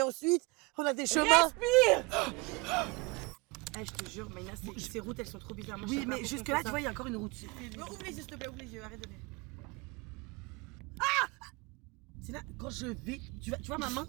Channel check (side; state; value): left; quieter; 27.3 dB